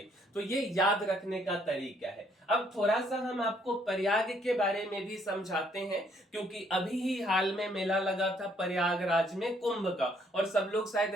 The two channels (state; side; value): normal; both; correlation 0.67